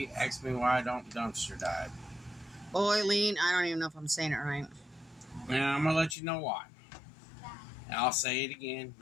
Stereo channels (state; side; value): drops out; right; at 6.2 s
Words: asked me why I don't dumpster dive. Boiling, I don't even know if I'm saying it right. And I'm going to let you know why. And I'll say it again.